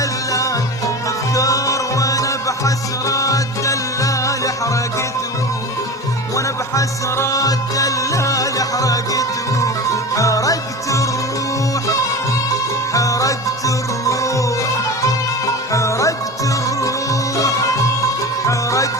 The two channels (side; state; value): both; normal; correlation 0.30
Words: تذكار. وأنا بحسرة الدلال حسرات دلال حرقتهم، حرقت الروح، حرقت الروح، حرقت الروح،